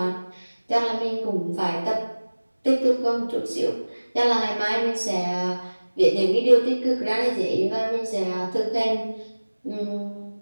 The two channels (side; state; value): both; inverted; correlation -1.00